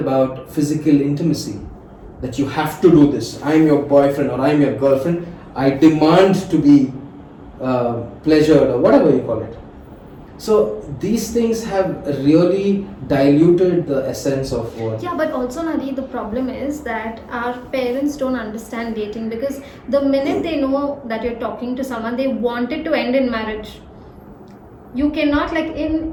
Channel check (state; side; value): identical; both; correlation 1.00